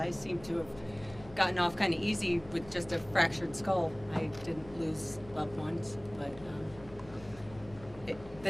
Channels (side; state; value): left; noise; hum, 19 dB below the sound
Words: seem to have gotten off kind of easy with just a fractured skull. I didn't lose loved ones, but